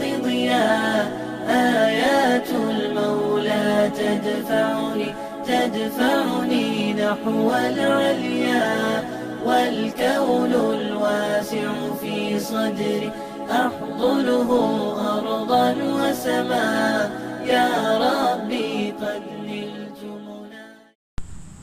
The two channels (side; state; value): both; identical; correlation 1.00